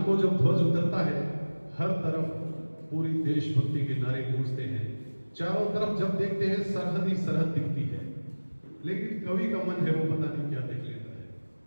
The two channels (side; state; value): both; inverted; correlation -1.00